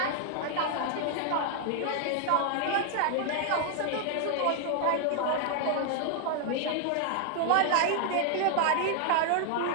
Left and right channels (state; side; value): different; both; correlation 0.00